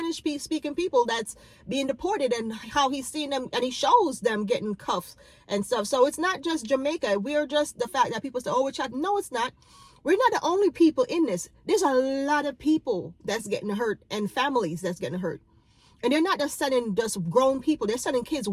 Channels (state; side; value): identical; both; correlation 1.00